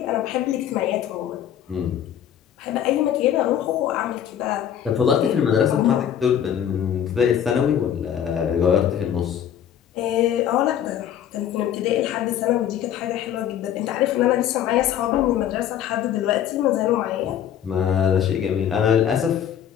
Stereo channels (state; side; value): quieter; right; 9.8 dB